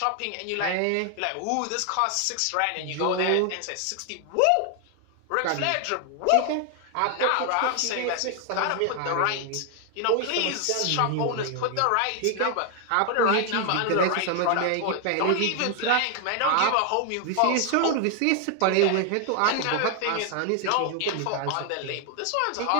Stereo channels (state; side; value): different; both; correlation 0.00